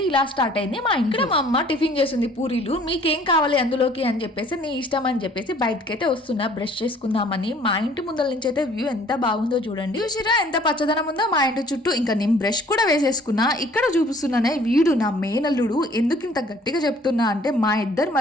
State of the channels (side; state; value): both; normal; correlation 0.55